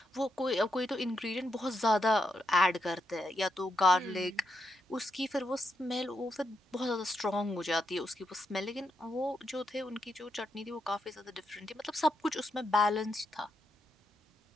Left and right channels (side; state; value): both; normal; correlation 0.82